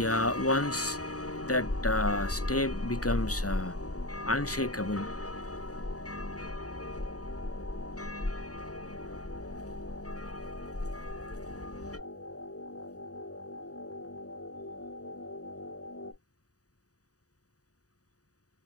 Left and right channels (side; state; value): right; late; 0.67 ms